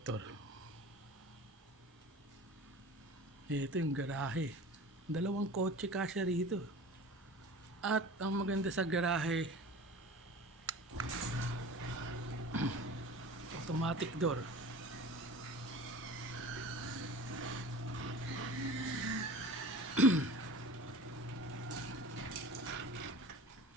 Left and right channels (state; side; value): normal; both; correlation 0.38